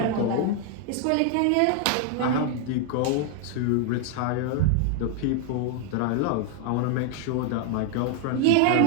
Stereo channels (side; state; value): both; different; correlation 0.00